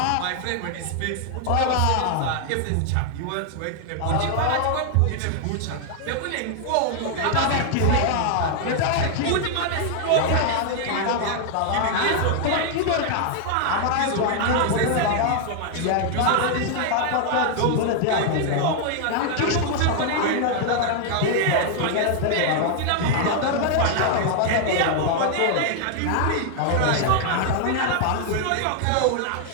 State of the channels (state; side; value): different; both; correlation 0.00